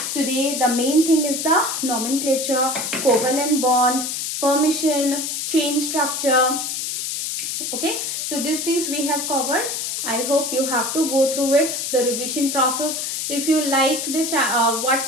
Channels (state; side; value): noise; left; hiss, 3 dB below the sound